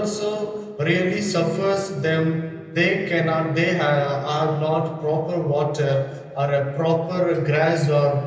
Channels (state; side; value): identical; both; correlation 1.00